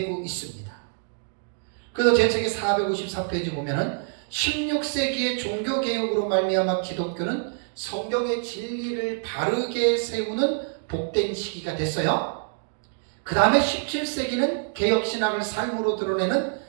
있습니다. 그래서 제 책의 454페이지 보면은 16세기의 종교개혁으로 말미암아 기독교는 성경의 진리를 바르게 세우는 복된 시기가 됐어요. 그 다음에 17세기는 개혁신학을 삶으로 드러내는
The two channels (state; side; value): silent; left; digital silence